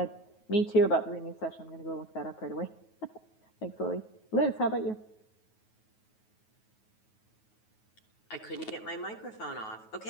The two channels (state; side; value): late; right; 9.3 ms